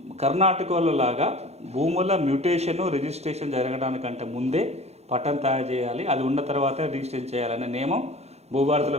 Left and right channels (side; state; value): left; late; 0.31 ms